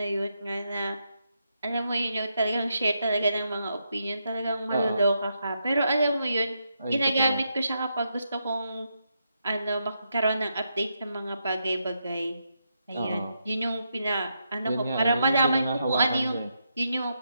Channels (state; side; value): inverted; both; correlation -0.82